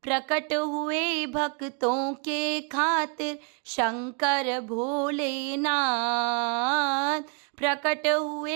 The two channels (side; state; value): left; quieter; 37.9 dB